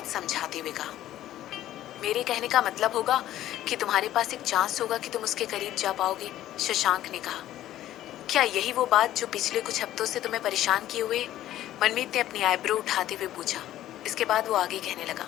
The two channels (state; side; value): quieter; right; 13.3 dB